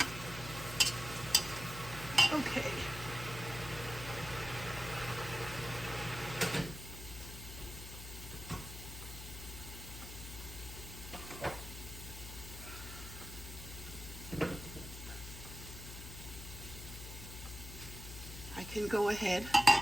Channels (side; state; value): left; noise; hum, 10 dB below the sound